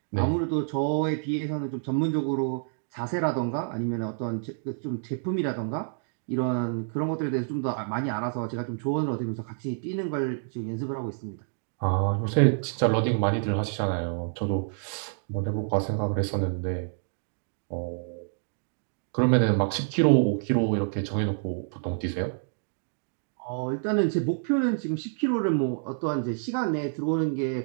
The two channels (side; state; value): left; silent; digital silence